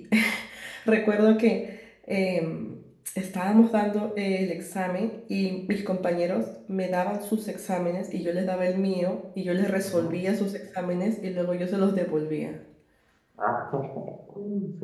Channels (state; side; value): identical; both; correlation 1.00